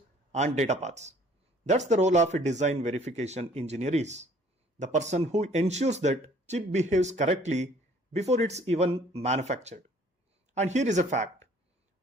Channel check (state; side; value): normal; both; correlation 0.56